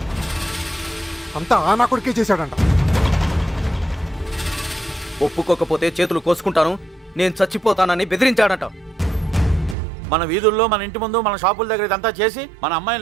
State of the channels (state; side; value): drops out; left; at 9.8 s